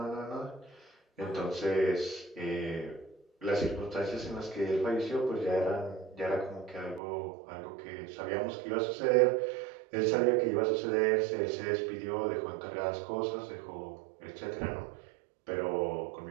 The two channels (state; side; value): drops out; left; at 7.0 s